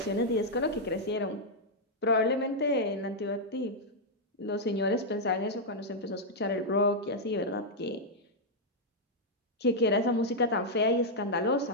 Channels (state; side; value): normal; both; correlation -0.04